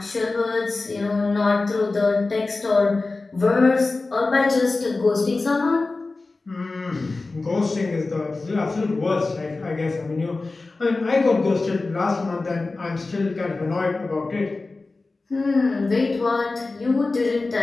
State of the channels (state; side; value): quieter; right; 3.5 dB